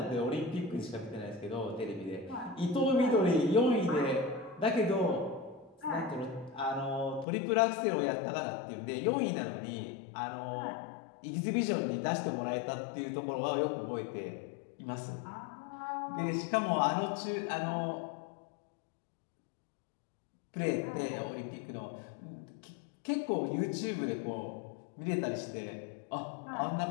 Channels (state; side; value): drops out; right; at 7.2 s